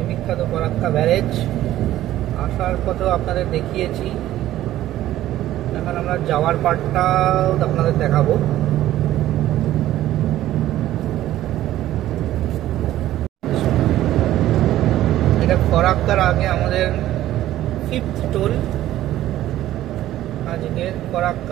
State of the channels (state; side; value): quieter; left; 13.9 dB